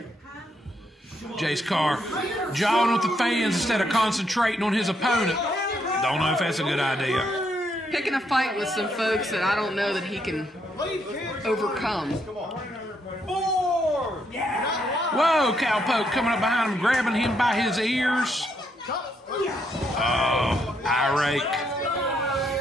Jayce Karr jawing with the fans instead of concentrating on his opponent. Don't know if that's a good idea. Picking a fight with some folks that I don't know that he can overcome. Whoa, Cowpoke coming up behind him, grabbing him by his ears. Oh, eye rake.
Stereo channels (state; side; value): normal; both; correlation 0.75